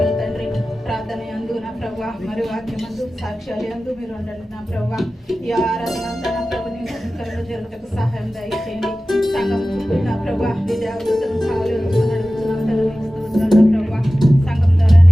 తండ్రి. ప్రార్థన యందు నా ప్రభా మరి వాక్యమందు సాక్ష్యాలు యందు మీరు ఉండండి నా ప్రభా. ఈ ఆరాధన అంతా నా ప్రభు నీ మహిమకరంగా జరుగుటకు సహాయం దయచేయండి. సంఘం చుట్టూ నా ప్రభా నీ దేవతలను కావాలి అడుగుతున్నాం తండ్రి స్తోత్రాలు నా ప్రభా. సంఘం ద్వారా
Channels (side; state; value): both; normal; correlation 0.96